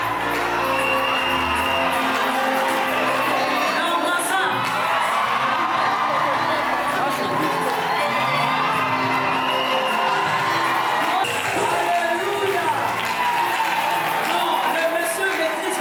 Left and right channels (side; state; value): both; identical; correlation 1.00